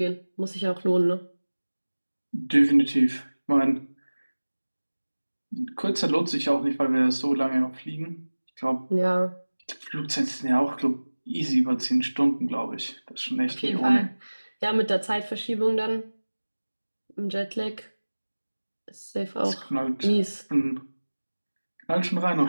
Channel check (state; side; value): inverted; both; correlation -1.00